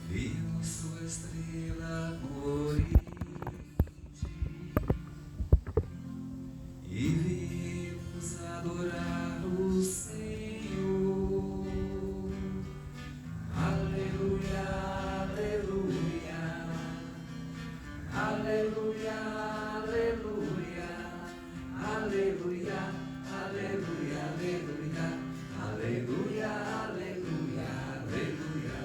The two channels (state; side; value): identical; both; correlation 1.00